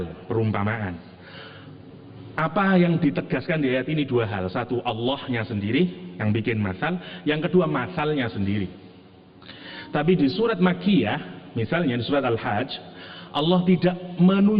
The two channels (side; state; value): both; identical; correlation 1.00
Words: perumpamaan. Apa yang ditegaskan di ayat ini dua hal. Satu, Allahnya sendiri yang bikin masal. Yang kedua, masalnya sendiri. Tapi di surat Makkiyah, misalnya di surat Al-Hajj, Allah tidak